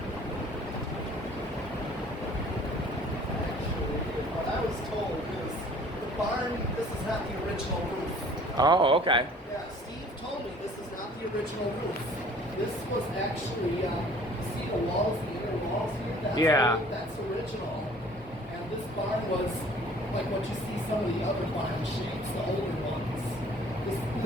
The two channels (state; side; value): normal; both; correlation 0.52